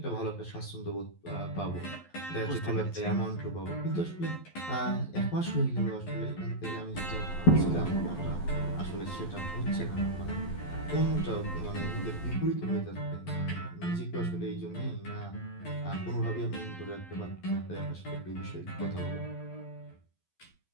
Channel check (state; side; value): late; right; 11 ms